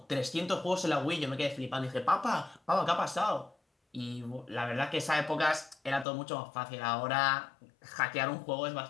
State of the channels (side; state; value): right; drops out; at 6.1 s